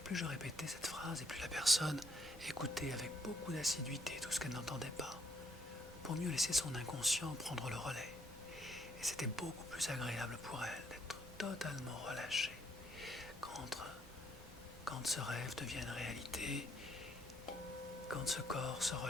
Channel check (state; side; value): normal; both; correlation 0.71